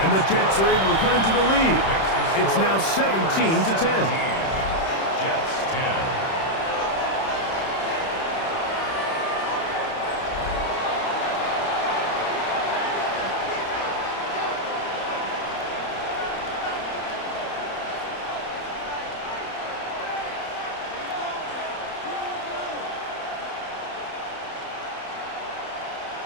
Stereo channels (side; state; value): right; late; 31 ms